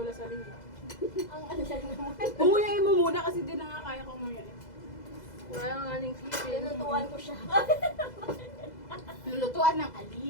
sa linggo. Ang ano siya naman. Umuyain mo muna kasi di na nga kaya ko umuyain. Wala nga aning sipin. Tinutuan ko siya. Lulutuan ng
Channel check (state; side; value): late; right; 2.0 ms